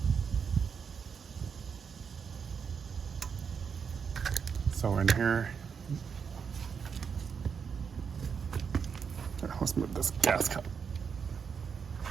So in here, let's move this gas cup.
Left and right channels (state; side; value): quieter; left; 6.4 dB